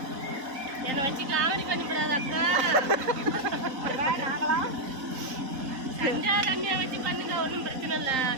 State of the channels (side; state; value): left; late; 3.8 ms